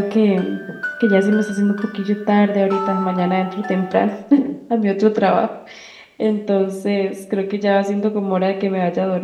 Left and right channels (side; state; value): both; identical; correlation 1.00